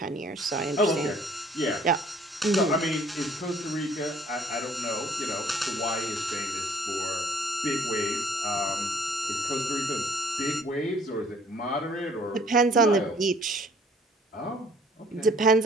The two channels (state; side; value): normal; both; correlation 0.57